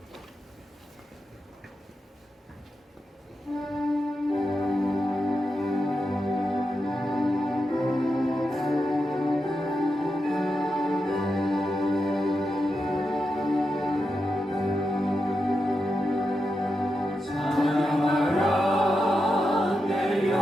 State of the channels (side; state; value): both; normal; correlation 0.88